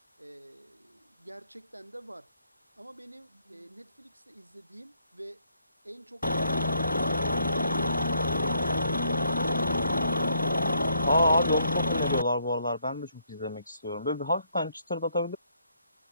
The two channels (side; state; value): both; inverted; correlation -0.71